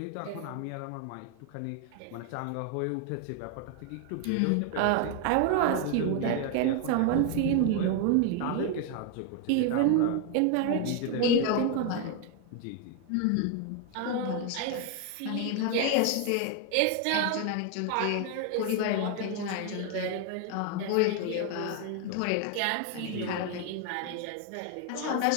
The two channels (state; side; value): different; both; correlation 0.00